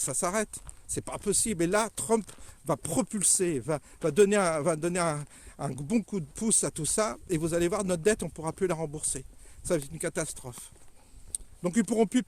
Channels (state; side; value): identical; both; correlation 1.00